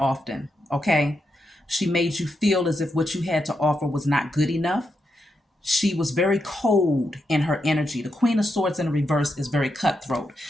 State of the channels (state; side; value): normal; both; correlation 0.84